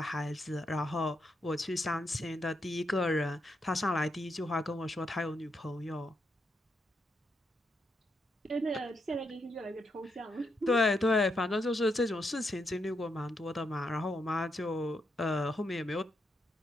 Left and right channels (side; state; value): both; normal; correlation 0.81